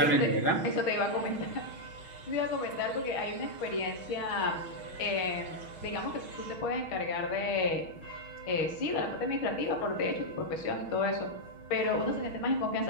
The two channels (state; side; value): late; right; 6.4 ms